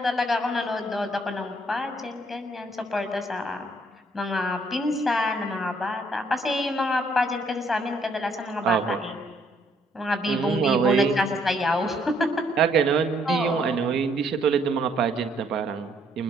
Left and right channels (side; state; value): both; normal; correlation 0.67